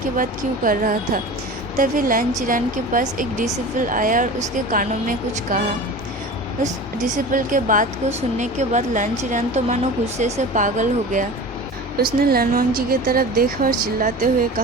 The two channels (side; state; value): both; normal; correlation 0.34